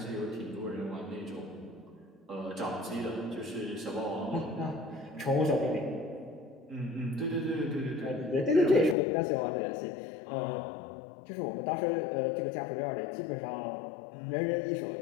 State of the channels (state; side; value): drops out; right; at 9.0 s